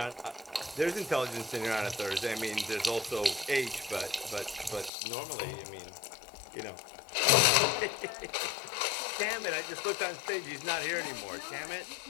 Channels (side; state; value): right; drops out; at 4.9 s